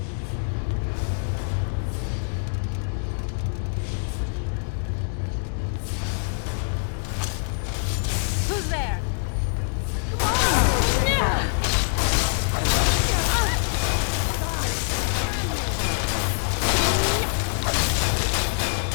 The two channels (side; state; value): right; silent; digital silence